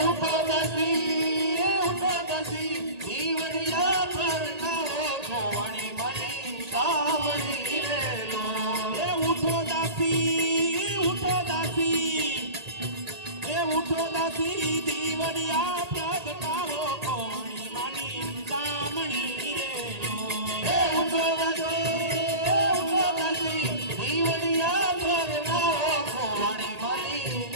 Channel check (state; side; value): late; left; 1.8 ms